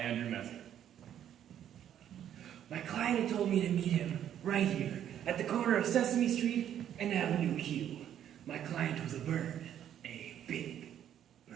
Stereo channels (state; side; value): quieter; left; 10.3 dB